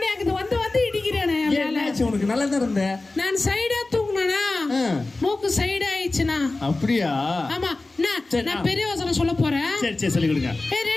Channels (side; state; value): right; quieter; 3.2 dB